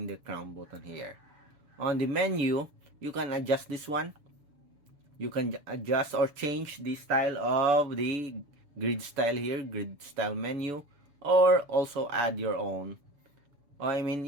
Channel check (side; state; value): left; late; 7.0 ms